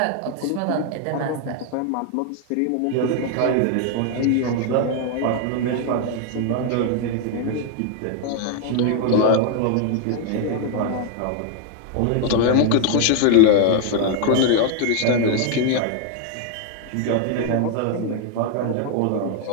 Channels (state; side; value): different; both; correlation 0.01